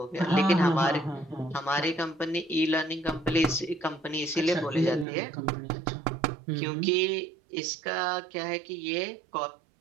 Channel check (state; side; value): drops out; left; at 5.1 s